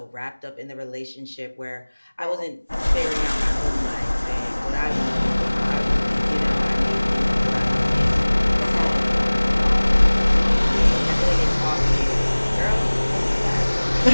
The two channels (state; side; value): inverted; both; correlation -1.00